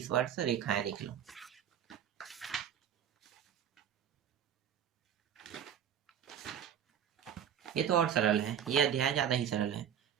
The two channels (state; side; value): quieter; left; 9.2 dB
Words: रेखाएं देख लो। ये तो और सरल है, ये अध्याय ज़्यादा ही सरल है।